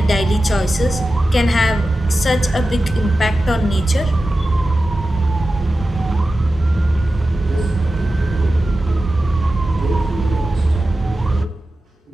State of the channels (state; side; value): normal; both; correlation 0.94